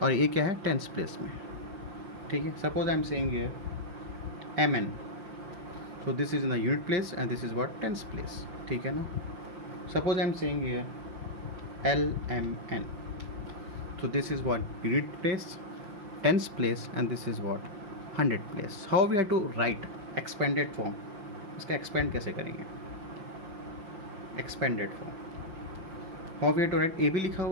ए क्या है, टेंस प्लेस में. ठीक है, suppose I am saying here M N. So this is in the unit place and this is what, tens place. ठीक है ना. Suppose I am saying here L M N. So this is what unit place, tens place, and this is what 100 place. How we have to write expanded form? इसका expand कैसे करेंगे, expanded form. How we have to write, AB लिखा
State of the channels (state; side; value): late; left; 5.7 ms